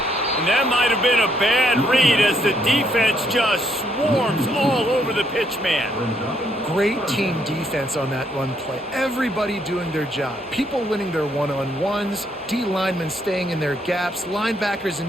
And that might have been a bad read as the defense just swarms all over the pitch man. Great team defense on that run play. Everybody doing their job. People winning their one-on-ones, D linemen staying in their gaps, linebackers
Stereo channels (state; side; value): normal; both; correlation 0.72